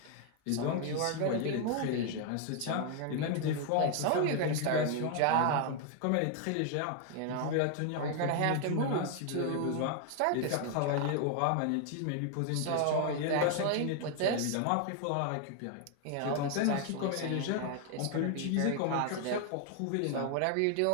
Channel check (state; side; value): different; both; correlation 0.00